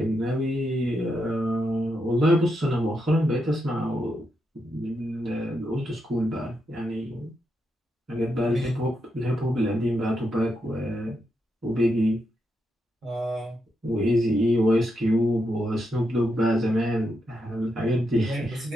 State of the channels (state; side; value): normal; both; correlation 0.83